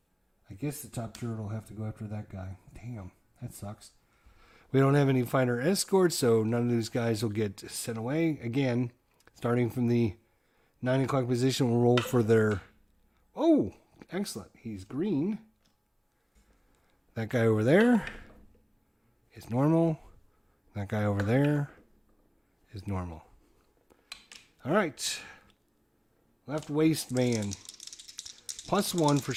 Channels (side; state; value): both; identical; correlation 1.00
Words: guess the top turret will have to go after that guy. Damn, that sucks. We don't have any fighter escorts, so none of these guys will get sent away. Again, starting from the 9 o'clock position, we'll roll for their... Oh, excellent. He's green. That guy over there is normal. That guy over there is normal. All right. Left waist man. +1 for